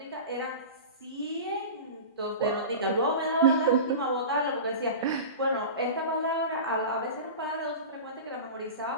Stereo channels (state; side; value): inverted; both; correlation -0.31